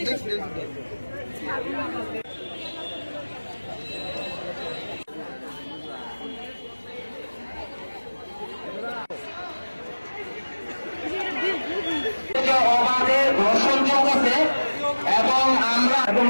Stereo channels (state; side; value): inverted; both; correlation -1.00